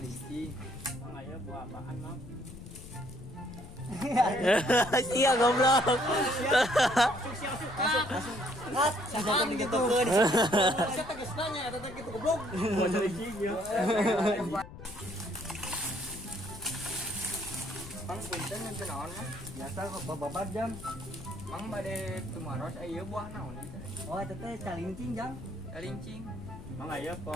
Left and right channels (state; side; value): noise; left; rumble, 15 dB below the sound